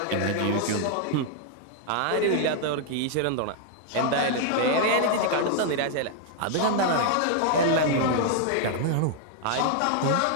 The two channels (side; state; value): both; different; correlation 0.00